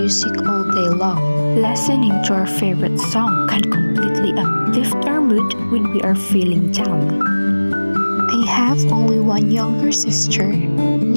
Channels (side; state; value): both; inverted; correlation -1.00